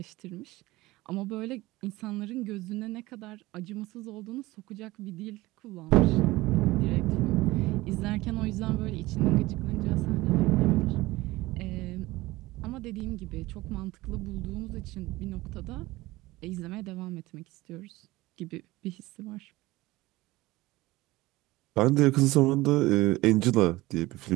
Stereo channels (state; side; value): quieter; left; 19.3 dB